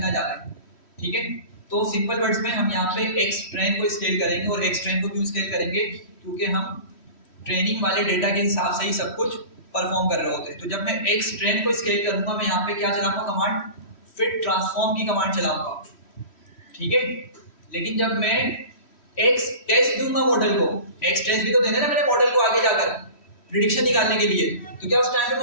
जा रहे हैं। ठीक है, तो सिंपल वर्ड्स में हम यहाँ पे एक्स ट्रेन को स्केल करेंगे, और एक्स ट्रेन को क्यों स्केल करेंगे, क्योंकि हम ट्रेनिंग वाले डेटा के हिसाब से ही सब कुछ परफॉर्म कर रहे होते हैं। तो जब मैं एक्स ट्रेन को स्केल करूंगा, मैं यहाँ पे क्या चलाऊंगा, कमांड फिट ट्रांसफॉर्म की कमांड चलाऊंगा। ठीक है, लेकिन जब मैं एक्स टेस्ट दूंगा मॉडल को, एक्स टेस्ट भी तो देना ना मेरे मॉडल को आगे जाकर प्रिडिक्शन निकालने के लिए, तो क्या उस टाइम में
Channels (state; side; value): late; right; 3.1 ms